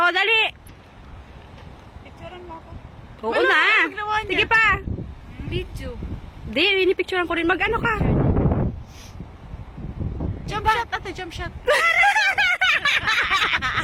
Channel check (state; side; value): identical; both; correlation 1.00